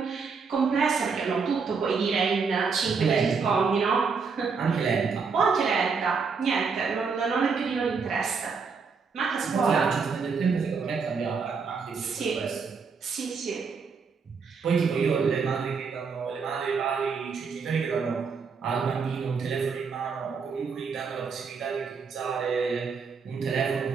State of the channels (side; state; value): left; quieter; 5.3 dB